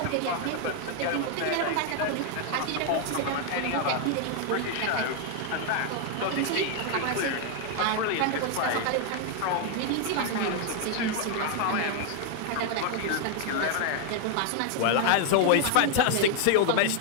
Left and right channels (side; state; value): both; different; correlation 0.00